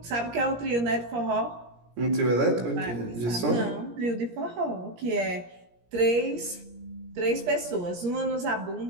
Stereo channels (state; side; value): late; left; 17 ms